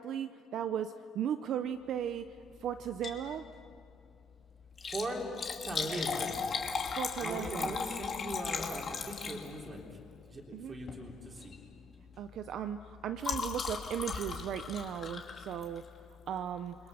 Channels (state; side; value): normal; both; correlation 0.65